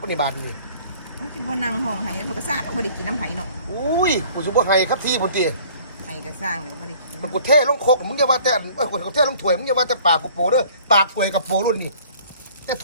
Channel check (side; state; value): both; inverted; correlation -0.53